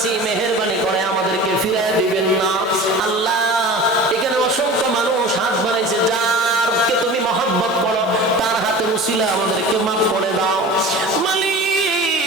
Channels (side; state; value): both; normal; correlation 0.37